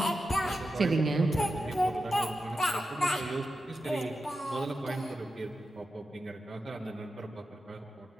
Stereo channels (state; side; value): normal; both; correlation 0.90